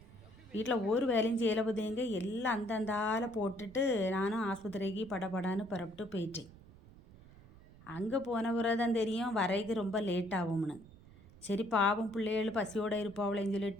வீட்டில் ஒரு வேலையும் செய்யலை பார்த்திங்க. எல்லாம் அந்தந்தால போட்டுட்டு நானும் ஆஸ்பத்திரிக்கு படப்படான்னு புறப்பட்டு போயிட்டேன். அங்கே போன பிறகு தான் தெரியும் வரைக்கு ரொம்ப லேட் ஆகும்னு. சரி பாவம் பிள்ளைகள் பசியோடு இருப்பாவளேன்னு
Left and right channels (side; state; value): right; noise; rumble, 21 dB below the sound